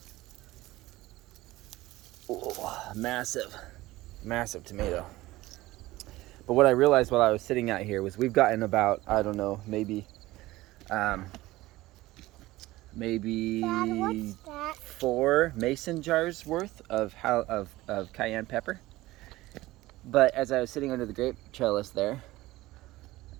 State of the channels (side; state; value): left; quieter; 17.9 dB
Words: massive, massive tomato. But what I realized while I was sitting out here was we've gotten about, I don't know, um, maybe Dad, what's that? 4 mason jars worth of cayenne pepper. But as I was sitting under the grape trellis there,